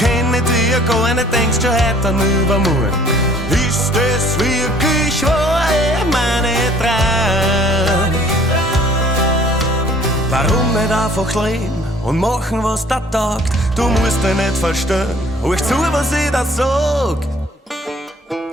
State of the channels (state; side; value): normal; both; correlation 0.55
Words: ich dich ja gar nicht, denkst du heute an übermorgen. Ist es wirklich wahr, meine Traum? Warum nicht einfach leben und machen, was da taugt? Du musst dich nicht verstehen, hör zu, was ich da sag.